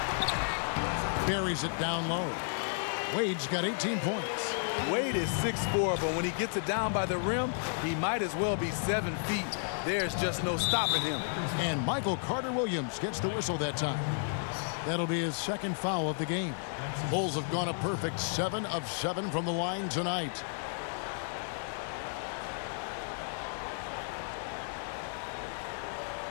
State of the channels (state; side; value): silent; right; digital silence